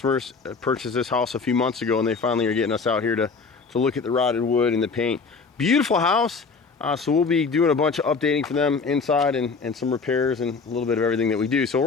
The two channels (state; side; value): quieter; right; 4.8 dB